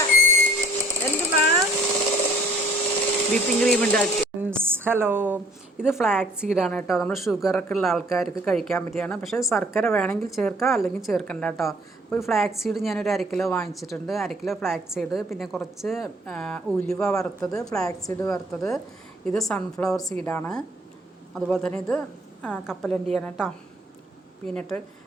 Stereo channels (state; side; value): normal; both; correlation 0.58